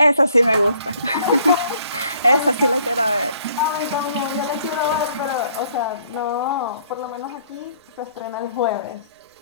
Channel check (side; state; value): both; inverted; correlation -0.63